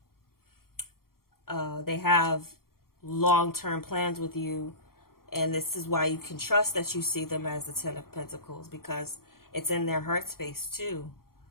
They have long-term plans with you, and this is why you can trust that you see them as the Ten of Pentacles, because it's in their heart space too,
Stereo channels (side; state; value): right; late; 0.93 ms